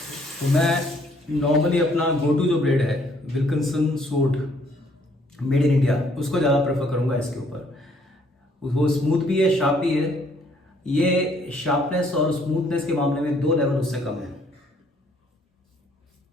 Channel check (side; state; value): both; normal; correlation 0.65